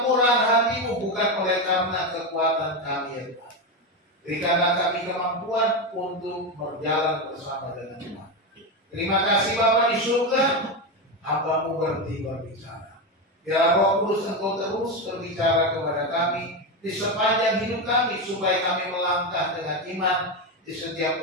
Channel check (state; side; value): normal; both; correlation 0.13